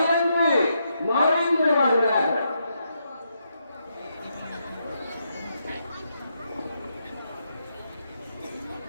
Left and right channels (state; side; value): inverted; both; correlation -0.80